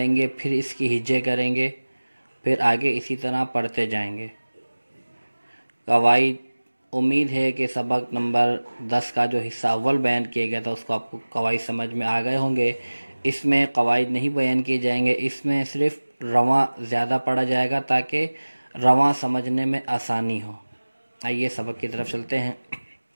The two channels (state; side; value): inverted; both; correlation -1.00